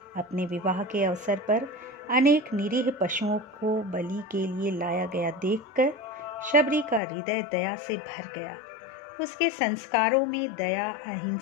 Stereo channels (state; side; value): drops out; right; at 7.0 s